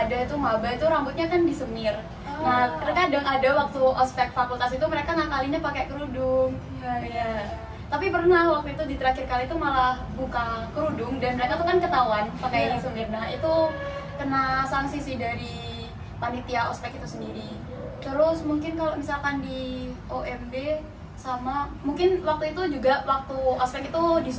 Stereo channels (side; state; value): both; identical; correlation 1.00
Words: itu maba itu rambutnya kan disemir. Nah terkadang ada waktu ospek fakultas itu mereka ngakalinnya pakai kerudung. Iya. Tapi pernah waktu itu di terakhir kali itu malah buka kerudung dan mereka tuh kan ketahuan pakai semir. Nah itu kena sanksi sih dari panitia ospek itu sendiri. Terus mungkin kalau misalkan di OMB sama, mungkin waktu itu juga waktu ospek itu